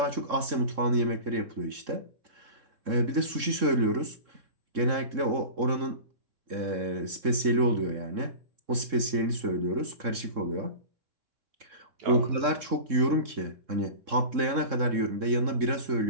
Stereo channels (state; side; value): late; left; 3.7 ms